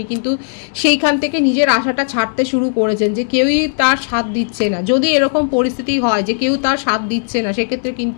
কিন্তু সেইখান থেকে নিজের আশাটা ছাড়তে শুরু করেছেন যে কেউই তার সাথ দিচ্ছে না। যদি এরকম পরিস্থিতি হয় যে কেউ তার সাথ দিচ্ছে না, সেক্ষেত্রে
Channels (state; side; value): silent; right; digital silence